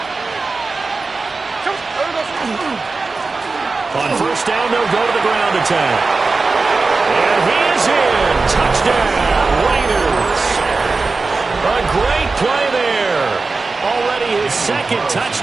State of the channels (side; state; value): left; quieter; 3.9 dB